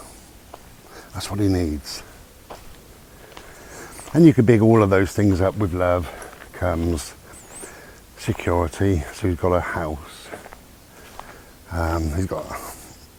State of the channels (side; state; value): both; identical; correlation 1.00